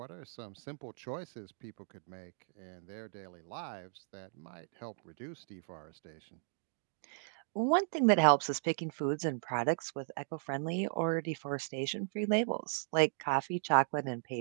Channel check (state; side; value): silent; left; digital silence